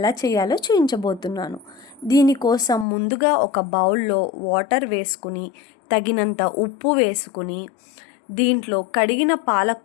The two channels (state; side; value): drops out; right; at 2.9 s